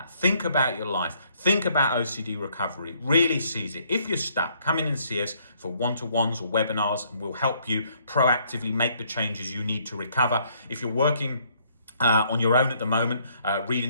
Think about your life. Think about OCD recovery. Really seize it. If you're stuck, come in and see us for one-to-ones or webinars, and we'll help you proactively make the changes you need to recover. If you're working on your own at the moment,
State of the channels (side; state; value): both; inverted; correlation -0.67